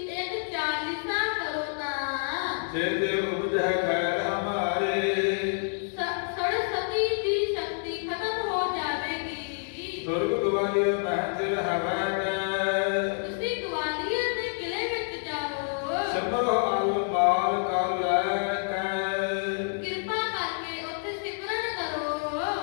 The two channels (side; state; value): right; silent; 59 dB below the other